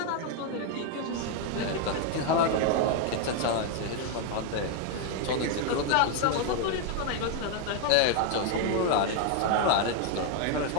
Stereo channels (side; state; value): both; different; correlation 0.00